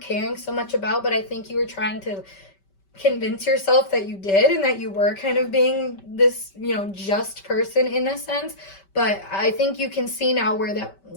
so much about, but I think you were trying to convince yourself that you did, and that you were kind of being this, you know, just person in a sense. But I think you can see now where that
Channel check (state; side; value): late; right; 5.2 ms